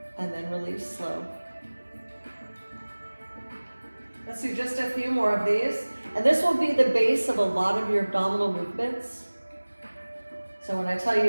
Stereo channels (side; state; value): both; inverted; correlation -1.00